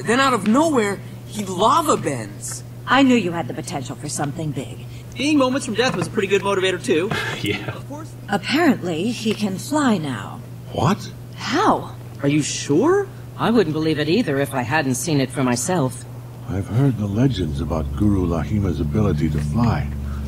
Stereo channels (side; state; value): both; identical; correlation 1.00